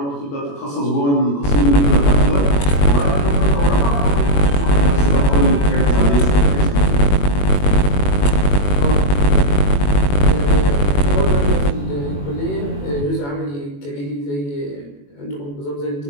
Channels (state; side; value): late; right; 21 ms